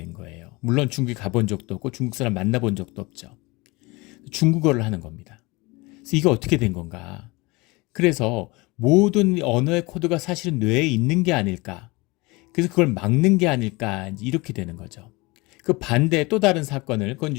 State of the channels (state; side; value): quieter; right; 24.2 dB